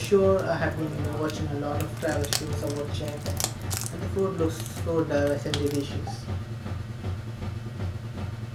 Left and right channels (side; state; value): both; identical; correlation 1.00